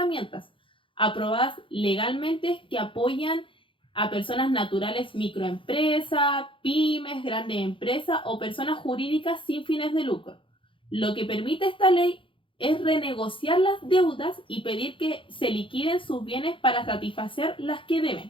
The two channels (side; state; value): right; late; 0.25 ms